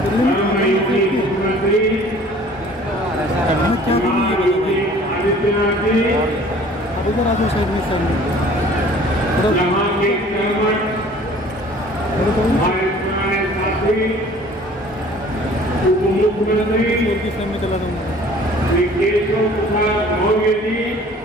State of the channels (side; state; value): both; normal; correlation 0.50